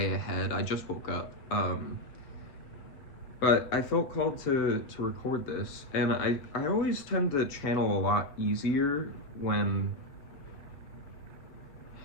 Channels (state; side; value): late; right; 7.1 ms